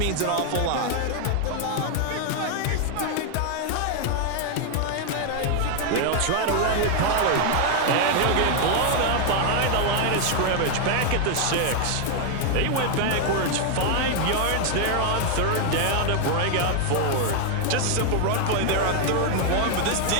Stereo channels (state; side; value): different; both; correlation 0.00